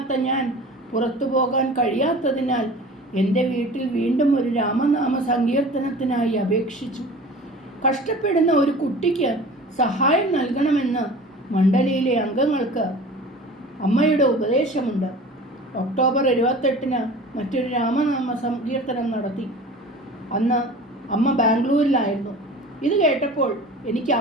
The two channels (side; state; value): both; normal; correlation 0.40